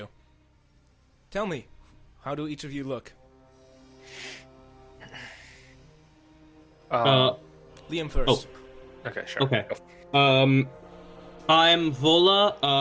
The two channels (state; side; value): identical; both; correlation 1.00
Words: Tell me, how do each of you look? Liam first. Okay, sure. Okay. I'm